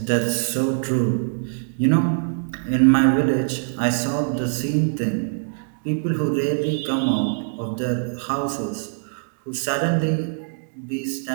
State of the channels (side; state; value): left; silent; digital silence